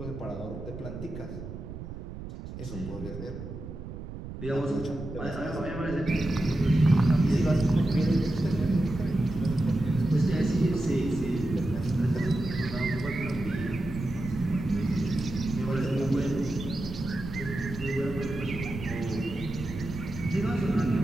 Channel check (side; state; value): right; noise; rumble, 10 dB below the sound